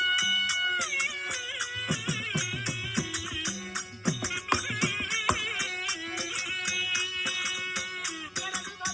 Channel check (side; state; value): both; identical; correlation 1.00